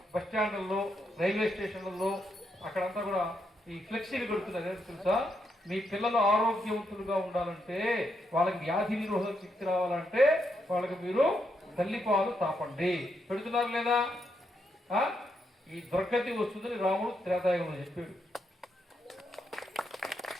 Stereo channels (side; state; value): both; normal; correlation 0.80